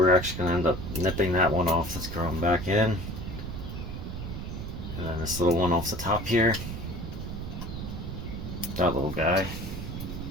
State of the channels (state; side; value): noise; right; rumble, 6 dB below the sound